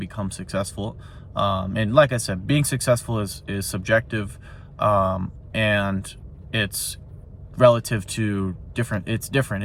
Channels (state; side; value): identical; both; correlation 1.00